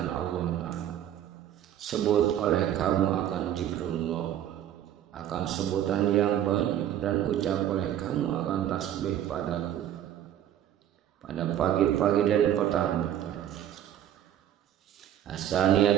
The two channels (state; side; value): quieter; left; 11.0 dB